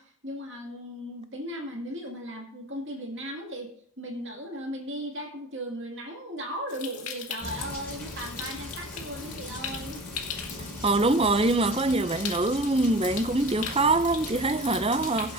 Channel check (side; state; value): both; normal; correlation 0.37